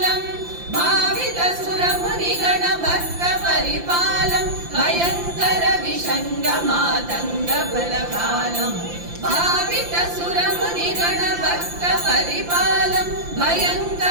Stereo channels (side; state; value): left; late; 5.8 ms